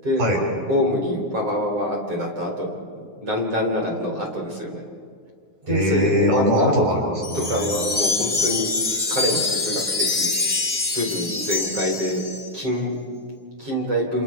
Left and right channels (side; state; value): left; late; 9.5 ms